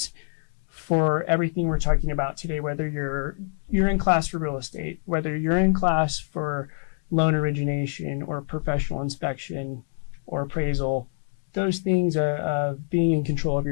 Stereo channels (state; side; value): silent; right; digital silence